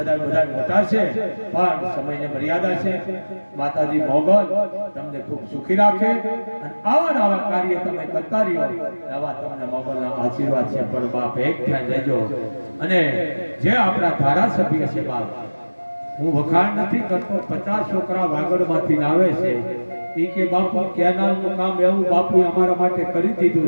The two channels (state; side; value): inverted; both; correlation -1.00